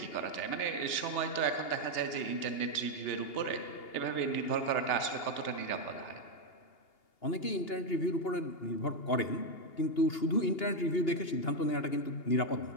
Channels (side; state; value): right; late; 2.8 ms